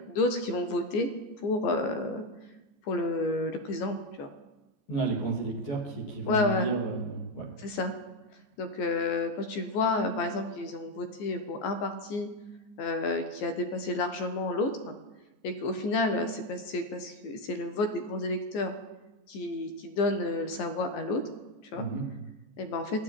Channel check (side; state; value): right; late; 14 ms